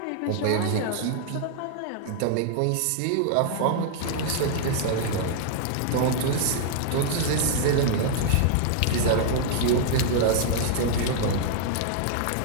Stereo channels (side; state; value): both; different; correlation -0.01